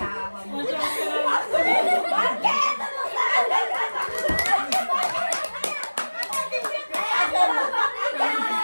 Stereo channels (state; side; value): inverted; both; correlation -1.00